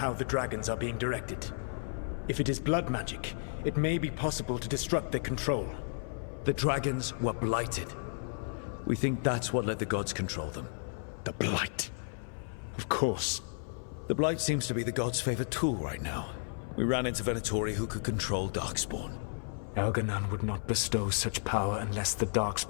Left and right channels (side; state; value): right; silent; 56 dB below the other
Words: the dragons are being directed? If it is blood magic, it may be possible to disrupt their control. The dragons were blighted. We think that's what let the gods control them. The Blight. Of course. The Blight seems to be the gods' favorite tool right now. We ran into Venatori who could control Darkspawn. Elganan would not bestow such power unless the